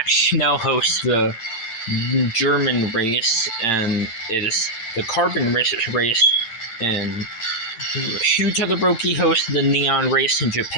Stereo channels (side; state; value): right; late; 8.9 ms